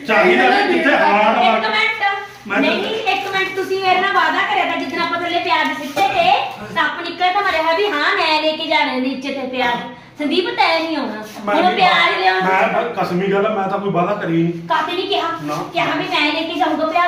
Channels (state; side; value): identical; both; correlation 1.00